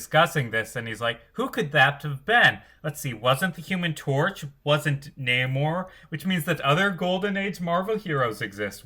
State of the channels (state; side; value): identical; both; correlation 1.00